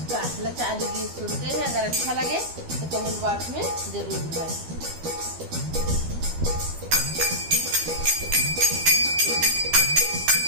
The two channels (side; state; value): left; late; 12 ms